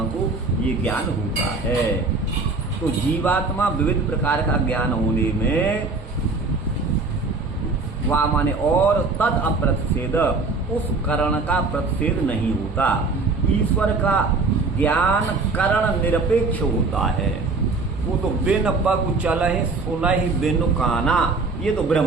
को ये ज्ञान होता है। तो जीवात्मा विविध प्रकार का ज्ञान होने में वह माने और तद अप्रतिषेध, उस करण का प्रतिषेध नहीं होता। ईश्वर का ज्ञान करण निरपेक्ष होता है, वो तो बिन पग चलहि सुनहि बिनु काना, ये तो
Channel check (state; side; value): quieter; left; 3.8 dB